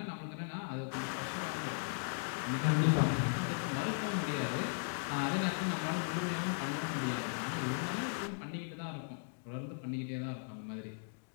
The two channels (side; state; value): right; silent; digital silence